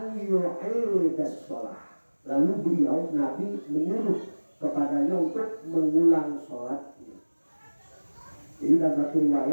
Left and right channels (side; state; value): both; inverted; correlation -1.00